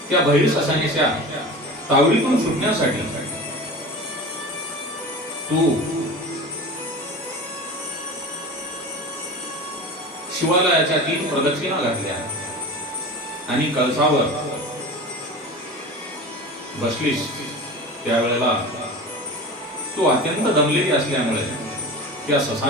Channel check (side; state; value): both; normal; correlation 0.33